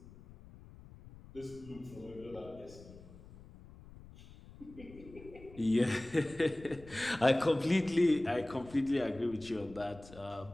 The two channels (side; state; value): left; noise; rumble, 19 dB below the sound